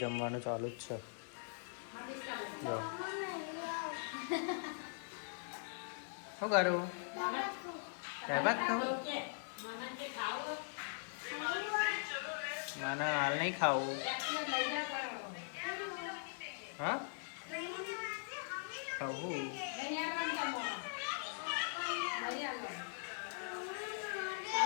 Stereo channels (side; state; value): right; silent; 50 dB below the other